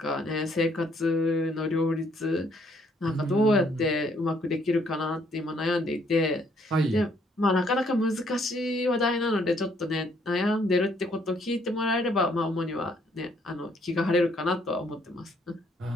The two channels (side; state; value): both; normal; correlation 0.67